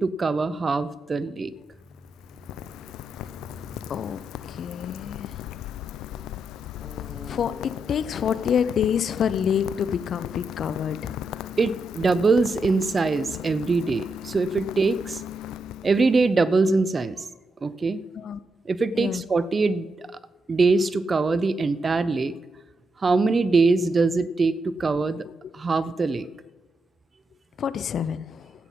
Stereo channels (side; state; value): both; normal; correlation 0.83